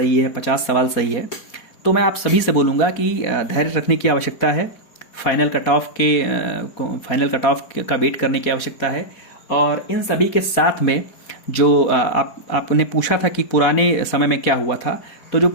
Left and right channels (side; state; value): right; late; 4.1 ms